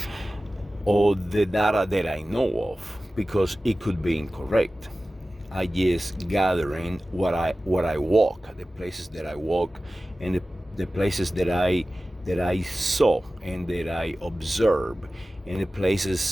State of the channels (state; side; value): normal; both; correlation 0.96